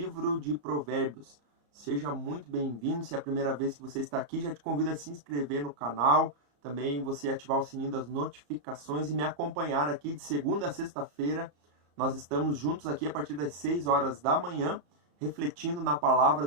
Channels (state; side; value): late; left; 34 ms